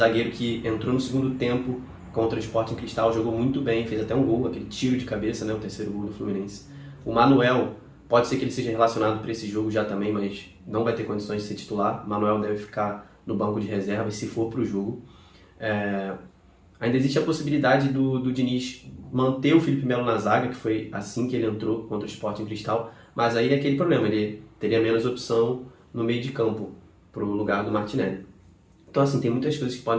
que entrou no segundo tempo contra o Sporting Cristal, jogou muito bem, fez até um gol, aquele tiro de cabeça, né, o terceiro gol do Fluminense. O Manuel, pode ser que ele seja relacionado para esse jogo já também, mas não vai ter condições de ser titular. O Manuel deve ficar no banco de reserva, se for para o jogo. Ainda existe a possibilidade do Diniz manter o Felipe Melo na zaga, que foi assim que ele entrou contra o Sporting Cristal, mas aí é aquele problema, ele teria menos opção no meio de campo para o lugar do Martinelli. Então assim, tem muitas coisas que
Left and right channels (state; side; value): identical; both; correlation 1.00